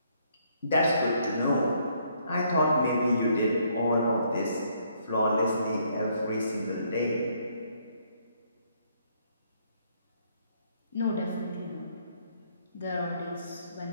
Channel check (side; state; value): both; inverted; correlation -0.69